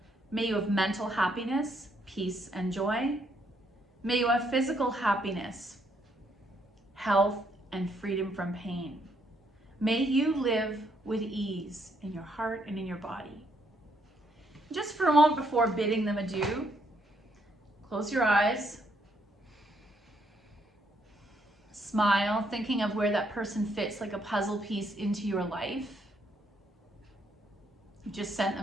May you have mental happiness, peace, and joy. May you have physical happiness, health, and freedom from pain. May you live with ease in your heart and in your body. Just for a moment before bidding them adieu, close your eyes. Smile, thinking of where that person fits like a puzzle piece into your life. You just sent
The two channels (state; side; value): normal; both; correlation 0.73